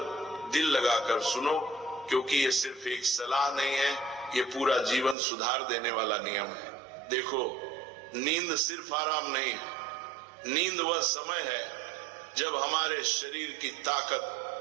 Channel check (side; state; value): left; drops out; at 5.2 s